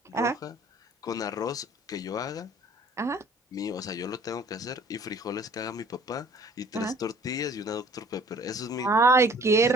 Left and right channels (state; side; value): normal; both; correlation 0.53